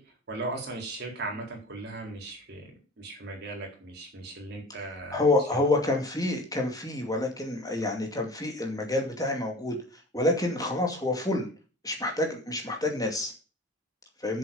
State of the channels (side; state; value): both; normal; correlation 0.39